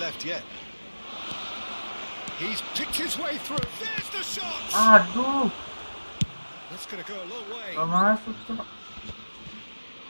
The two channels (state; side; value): inverted; both; correlation -1.00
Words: yet. He's picked his way through. There's the shot! Aduh. That's going to go a long way. Gak masuk, Cok.